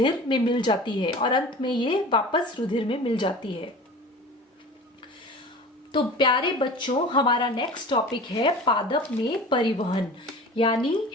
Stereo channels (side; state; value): both; normal; correlation 0.38